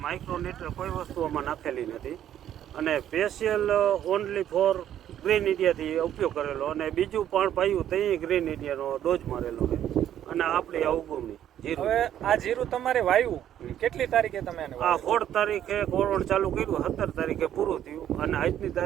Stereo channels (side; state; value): left; quieter; 10.8 dB